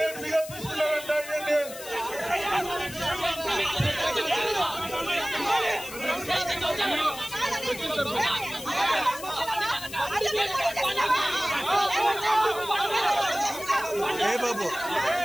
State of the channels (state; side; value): noise; left; hiss, 13 dB below the sound